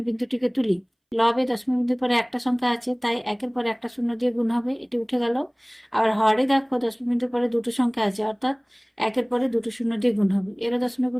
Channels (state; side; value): identical; both; correlation 1.00